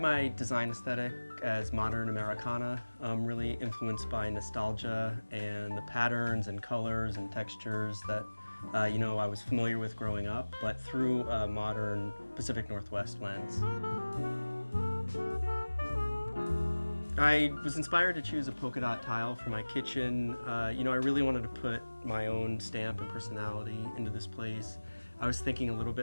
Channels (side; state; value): both; inverted; correlation -1.00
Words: my design aesthetic as modern Americana, really influenced by nostalgia and the patterns and colors and textures that I was familiar with growing up, but through a modern Pacific Northwest lens. I was inspired to choose a polka dot tile for my kitchen. I really wanted to put my own stamp and personality into this place. I was thinking a little